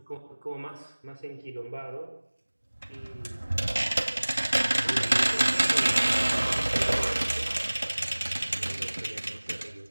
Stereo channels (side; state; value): both; inverted; correlation -1.00